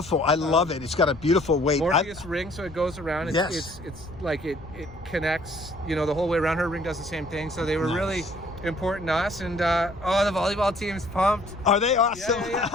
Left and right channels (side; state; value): left; noise; rumble, 17 dB below the sound